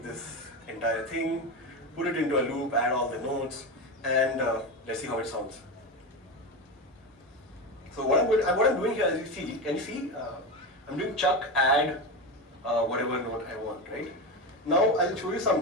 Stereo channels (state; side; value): normal; both; correlation 0.18